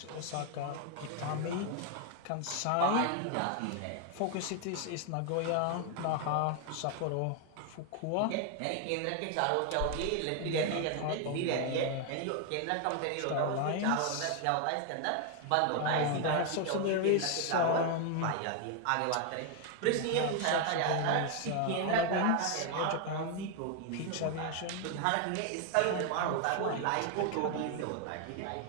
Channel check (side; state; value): both; different; correlation 0.01